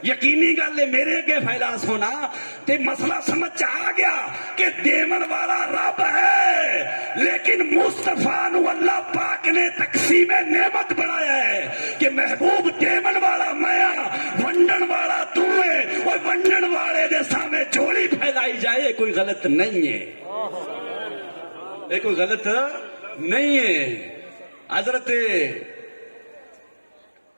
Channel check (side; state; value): both; inverted; correlation -1.00